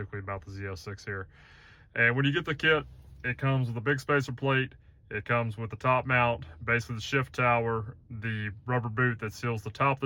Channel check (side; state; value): both; identical; correlation 1.00